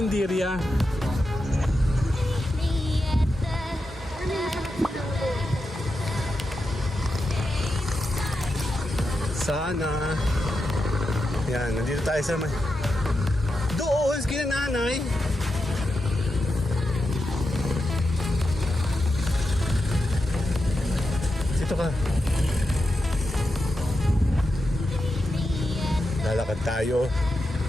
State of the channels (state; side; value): normal; both; correlation 0.88